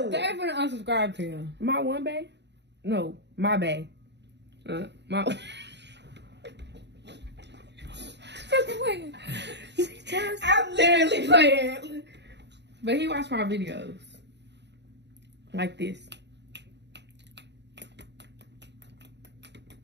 They're gonna unsubscribe to you. My one bae? No, my bae. My. I'm literally playing. But he watched my videos. Like this.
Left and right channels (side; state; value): left; late; 0.50 ms